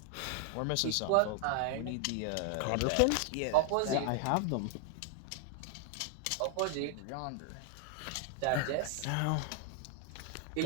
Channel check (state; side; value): different; both; correlation 0.00